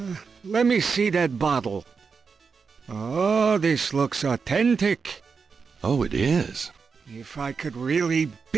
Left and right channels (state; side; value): quieter; left; 5.4 dB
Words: Let me see that bottle. Oh, this looks authentic. Oh, it is. If I could really